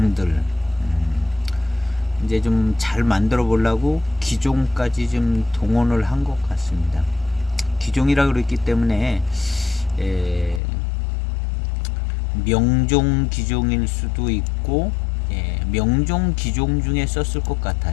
이제 좀 잘 만들어 보려고 기종까지 좀 동원을 한 것 같습니다. 기종이라 그랬기 때문에 명종 기종일 수도 있고 명종 기종 중에 썼을 것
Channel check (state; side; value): drops out; right; at 10.6 s